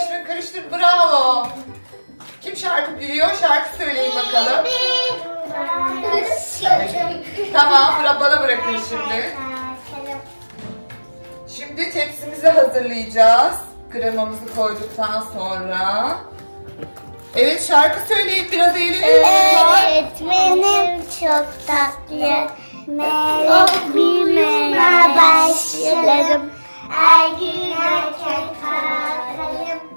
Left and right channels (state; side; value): inverted; both; correlation -1.00